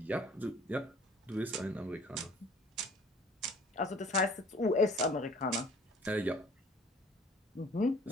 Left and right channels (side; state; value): both; normal; correlation 0.52